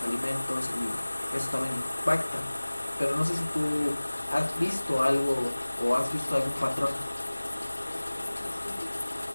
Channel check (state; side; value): inverted; both; correlation -1.00